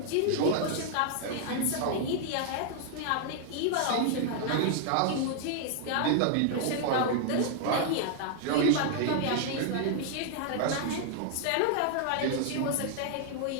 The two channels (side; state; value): both; different; correlation 0.00